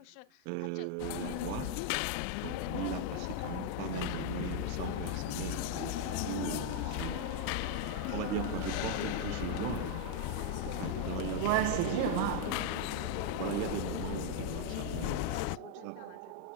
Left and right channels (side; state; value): both; different; correlation 0.00